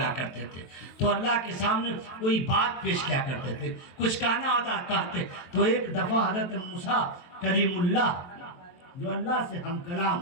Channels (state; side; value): late; right; 23 ms